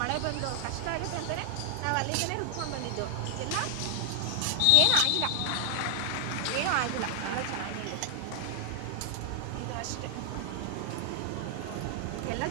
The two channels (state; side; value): different; both; correlation 0.00